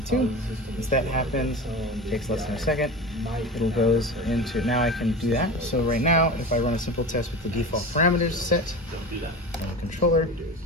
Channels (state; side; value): normal; both; correlation 0.30